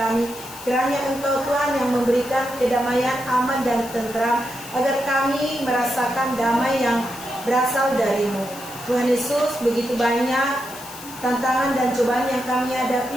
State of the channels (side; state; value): left; noise; hiss, 15 dB below the sound